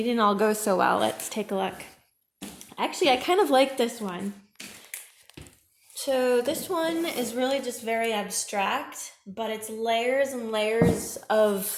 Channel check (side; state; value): both; identical; correlation 1.00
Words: didn't all go so well. Let's take a look. Actually, I kind of like this one. So this one is really just very abstract, but it's layers and layers